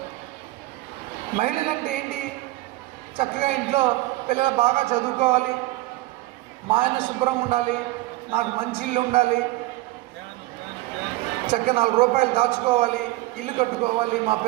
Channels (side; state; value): left; quieter; 19.5 dB